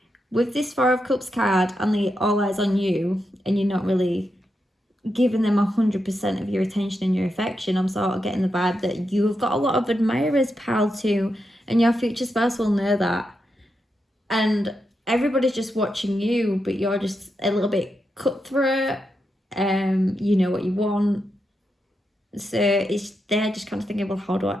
with this Four of Cups card and the all eyes on you, and you're not really giving them 100% of your attention and your affection, I'm sort of getting the vibe that you have got a lot of admirers, pal, too, and your future spouse will know that. And everybody's just watching you, but you're just a little bit cutthroat. You know what you want. So they're just kind of thinking, well, how do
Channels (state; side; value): normal; both; correlation 0.85